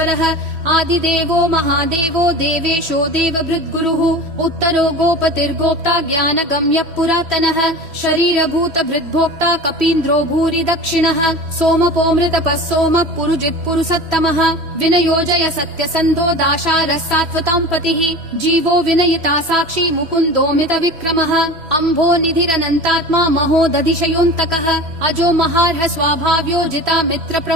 आदिदेवो महादेवो देवेशो देवभृद्गुरुः उत्तरो गोपतिर्गोप्ता ज्ञानगम्यः पुरातनः शरीरभूतभृद्भोक्ता कपीन्द्रो भूरि दक्षिणः सोमपोऽमृतपः सोमः पुरुजित् पुरुषोत्तमः विनयोजय सत्यसन्धो दाशारः सात्वतां पतिः जीवो विनयिता साक्षी मुकुन्दोमित विक्रमः अम्भो निधिरनन्तात्मा महोदधिशयोऽन्तकः अजो महार्ह स्वाभाव्यो जिता मित्र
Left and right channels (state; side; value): late; left; 3.1 ms